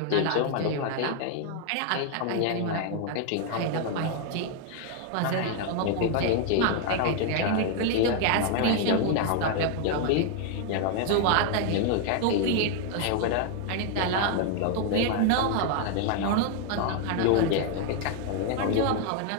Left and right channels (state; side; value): different; both; correlation 0.00